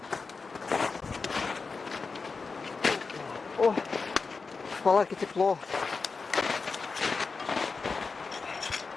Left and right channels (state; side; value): quieter; right; 4.6 dB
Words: О, в палатке тепло.